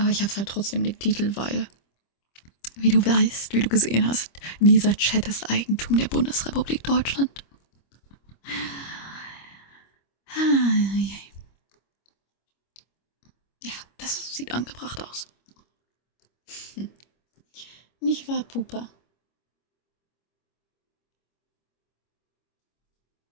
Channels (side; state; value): right; late; 25 ms